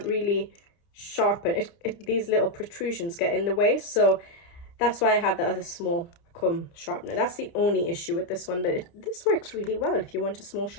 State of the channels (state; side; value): late; right; 29 ms